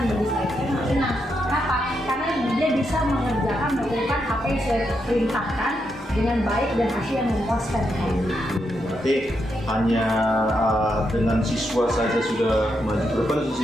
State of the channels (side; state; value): both; normal; correlation 0.82